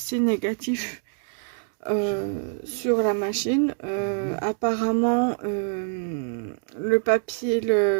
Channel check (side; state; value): left; silent; digital silence